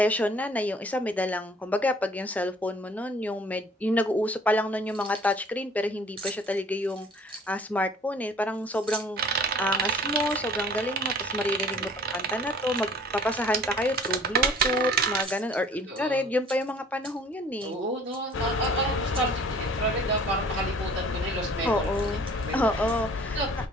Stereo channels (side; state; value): both; normal; correlation 0.51